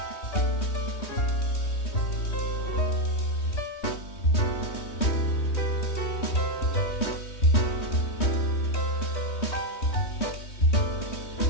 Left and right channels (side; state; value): right; late; 3.2 ms